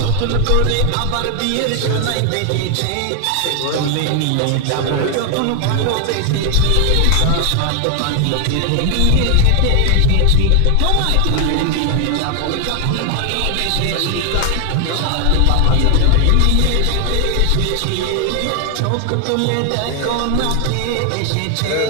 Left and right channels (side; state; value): both; different; correlation 0.00